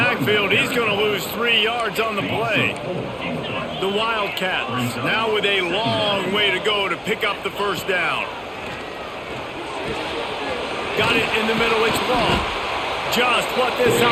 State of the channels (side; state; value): both; identical; correlation 1.00